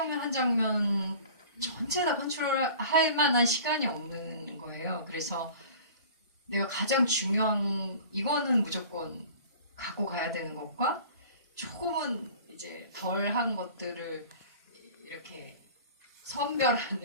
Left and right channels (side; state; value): both; inverted; correlation -0.43